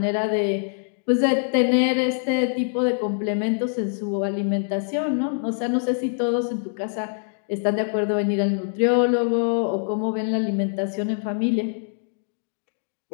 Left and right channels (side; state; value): right; silent; digital silence